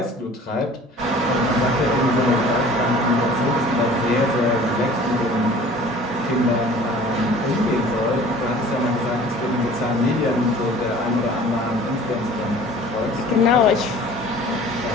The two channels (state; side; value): normal; both; correlation 0.47